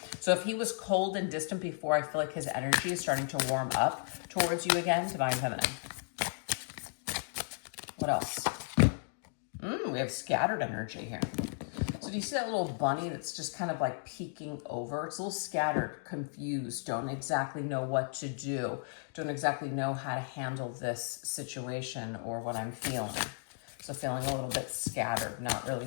So if he was cold and distant before, I feel like his energy is starting to warm up towards you again, divine feminine. What else? We have scattered energy here. So do you see that little bunny that's just kind of like peeking over? It's a little scattered, confused, don't exactly know what to do, don't exactly know how to handle this situation or what I'm feeling. So feeling a little bit scattered, not really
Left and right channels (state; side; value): silent; right; digital silence